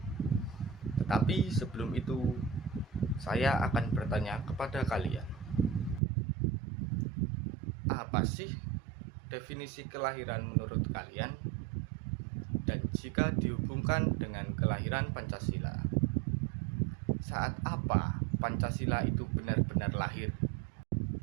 Tetapi sebelum itu, saya akan bertanya kepada kalian, apa sih definisi kelahiran menurut kalian? Dan jika dihubungkan dengan kelahiran Pancasila, saat apa Pancasila itu benar-benar lahir?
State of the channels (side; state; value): left; drops out; at 6.0 s